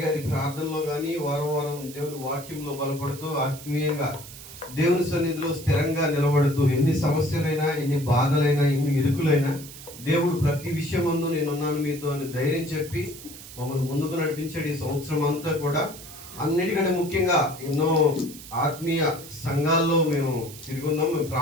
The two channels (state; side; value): noise; right; hiss, 15 dB below the sound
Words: ప్రార్థనలో కానీ వారం దేవుని వాక్యంలో బలపడుతూ ఆత్మీయంగా దేవుని సన్నిధిలో స్థిరంగా నిలబడుతూ ఎన్ని సమస్యలైనా, ఎన్ని బాధలైనా, ఎన్ని ఇరుకులైనా దేవుడు ప్రతి విషయం ముందు నేనున్నాను మీతో అని ధైర్యం చెప్పి మమ్మల్ని ముందుకు నడిపించాడు. ఈ సంవత్సరం అంతా కూడా అన్నిటికంటే ముఖ్యంగా ఎన్నో ఆత్మీయ సంఘాల్లో మేము తిరుగున్నాం, మేము